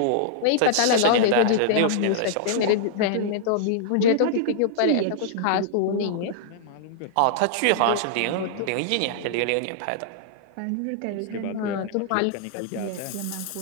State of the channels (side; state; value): both; different; correlation -0.01